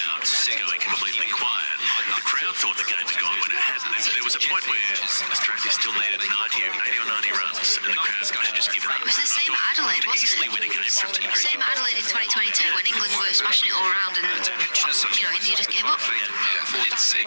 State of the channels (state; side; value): inverted; both; correlation -1.00